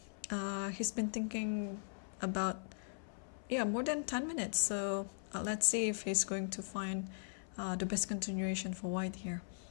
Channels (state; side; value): silent; right; 52 dB below the other